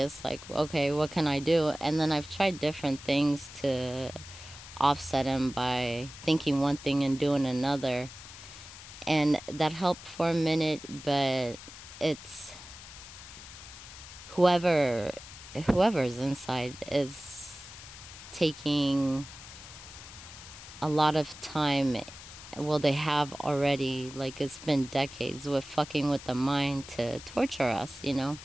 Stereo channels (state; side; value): noise; left; hiss, 15 dB below the sound